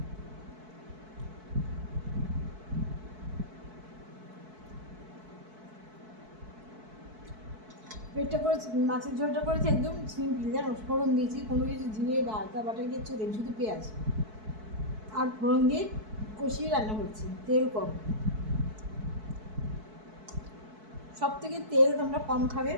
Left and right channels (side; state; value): left; late; 4.6 ms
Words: পেটটা করেছি, মাছের ঝোলটা করেছি একদম সিম্পল জানো। ফোড়ন দিয়েছি, কোনো কিছু জিরে বা আদা বাটা কিচ্ছু দিই, শুধু পেঁয়াজ আর ফোড়ন দিয়ে কষিয়ে রান্না করছি, তেল কম। সব থেকে তেল তোমরা কম খাবে,